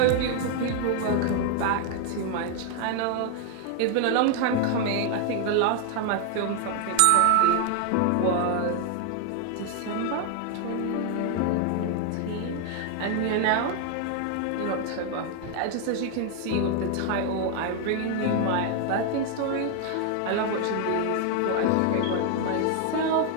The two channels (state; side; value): different; both; correlation 0.00